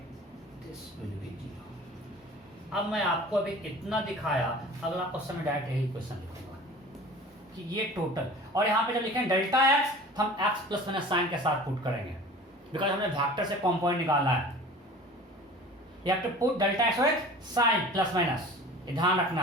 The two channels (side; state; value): both; normal; correlation 0.42